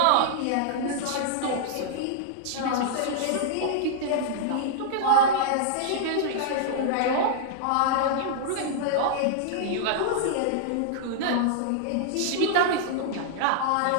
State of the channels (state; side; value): different; both; correlation -0.01